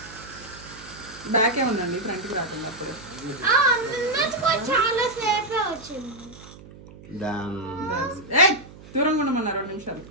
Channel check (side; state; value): right; noise; hum, 19 dB below the sound